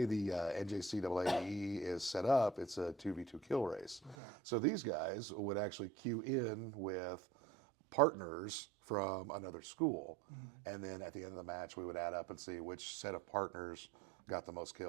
the NJCAAE is set up, it's a 2v2 kill race. Okay. So these guys would actually queue in with partners from another school, and then at the end of the match, we would add up and see which set of partners got the most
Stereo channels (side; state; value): left; drops out; at 4.2 s